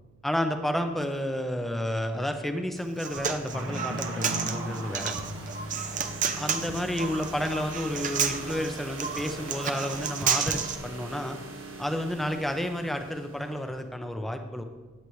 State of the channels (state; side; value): noise; right; hum, 29 dB below the sound